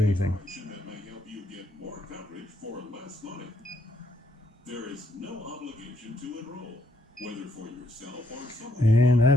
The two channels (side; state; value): both; normal; correlation 0.74